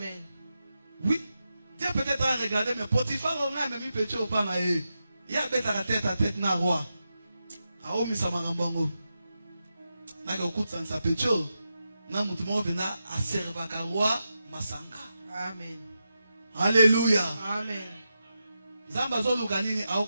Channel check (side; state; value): both; inverted; correlation -0.89